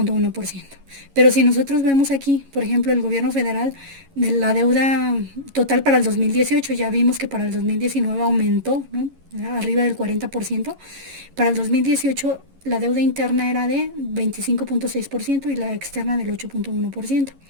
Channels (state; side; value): late; left; 11 ms